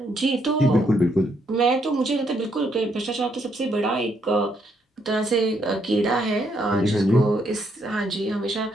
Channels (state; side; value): normal; both; correlation 0.74